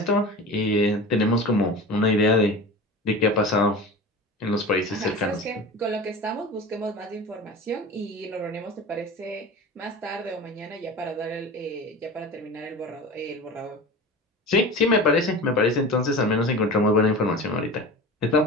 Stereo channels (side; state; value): both; normal; correlation 0.33